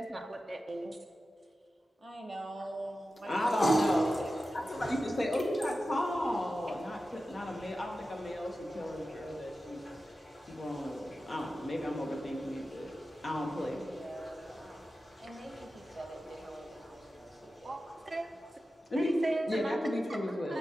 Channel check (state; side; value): normal; both; correlation 0.93